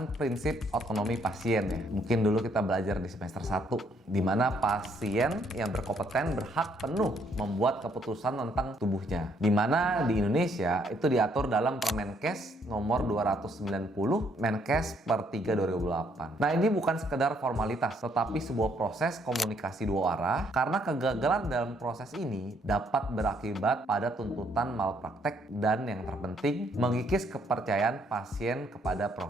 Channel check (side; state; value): both; normal; correlation 0.69